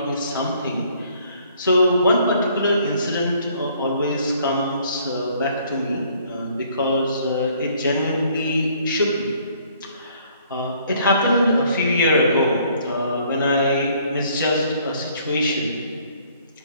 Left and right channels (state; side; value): inverted; both; correlation -0.62